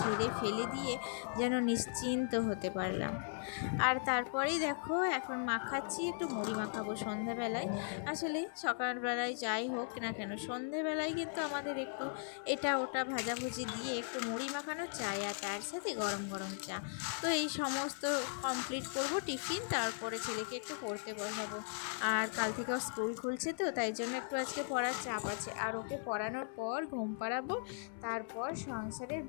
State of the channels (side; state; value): right; silent; 52 dB below the other